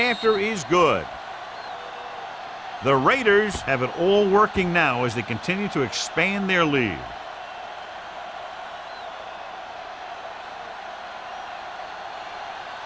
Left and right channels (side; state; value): both; identical; correlation 1.00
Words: is good. The Raiders have it all working now as they continue to expand their lead.